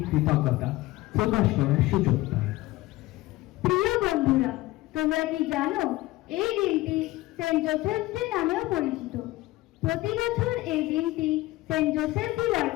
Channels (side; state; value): right; quieter; 18.6 dB